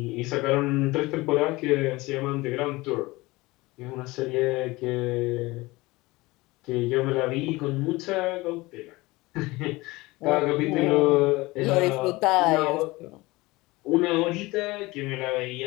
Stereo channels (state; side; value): quieter; right; 21.4 dB